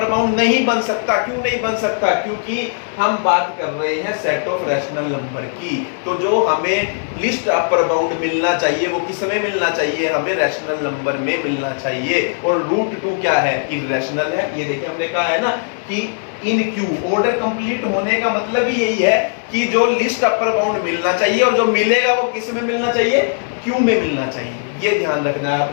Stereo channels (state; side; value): silent; right; digital silence